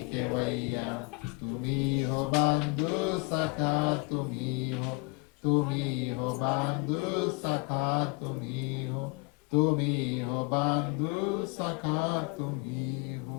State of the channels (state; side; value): quieter; right; 28.6 dB